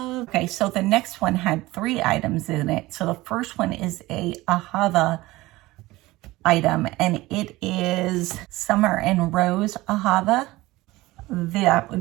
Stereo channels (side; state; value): left; quieter; 19.2 dB